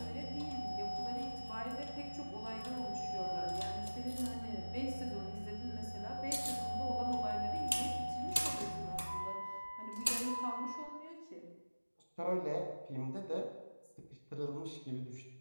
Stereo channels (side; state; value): both; inverted; correlation -1.00